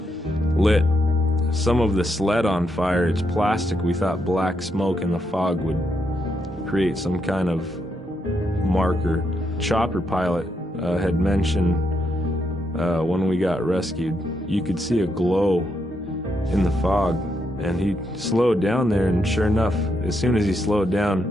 lit some of the sled on fire. It's plastic. We thought black smoke in the fog would create some kind of marker. Chopper pilot had mentioned when we got rescued, you could see a glow in the fog. And he slowed down there, and sure enough, as soon as he slowed down,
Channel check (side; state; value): both; normal; correlation 0.80